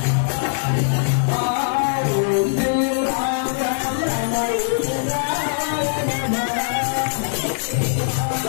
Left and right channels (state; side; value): silent; right; digital silence